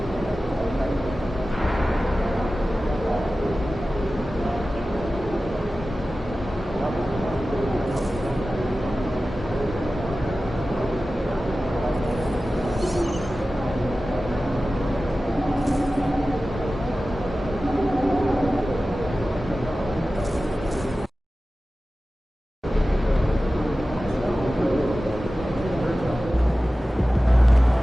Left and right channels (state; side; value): normal; both; correlation 0.95